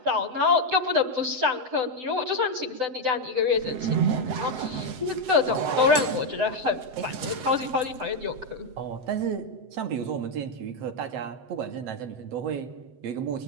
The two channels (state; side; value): late; left; 7.9 ms